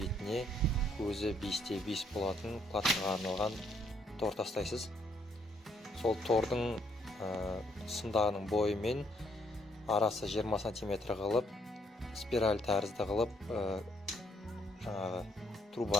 көзі 5×5 болатын платформаға арналған тор тастайсыз. Сол тордың сымдағының бойымен арасы 20 см қылып, спираль тәрізді қылып, жаңағы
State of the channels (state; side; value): normal; both; correlation 0.70